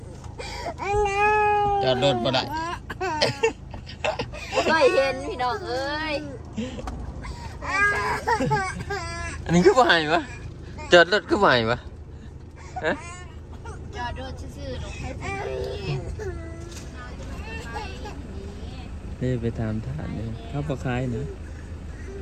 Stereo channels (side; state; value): both; identical; correlation 1.00